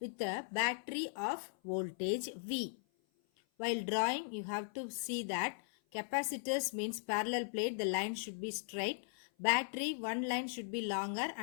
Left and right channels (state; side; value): silent; right; 52 dB below the other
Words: a battery of voltage V. While drawing, you have to see that capacitors means parallel plate, the line should be straight. Battery, one line should be longer